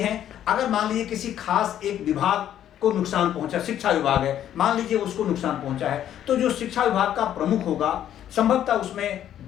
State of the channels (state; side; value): quieter; right; 10.9 dB